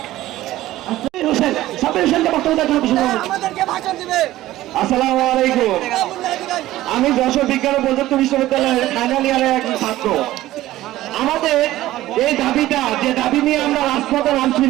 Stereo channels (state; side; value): quieter; left; 15.5 dB